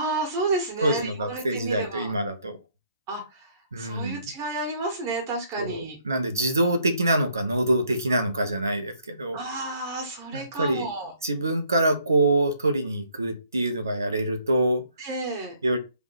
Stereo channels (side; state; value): both; inverted; correlation -0.65